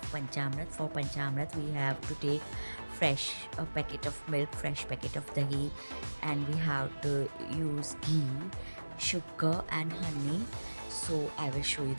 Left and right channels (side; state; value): both; inverted; correlation -1.00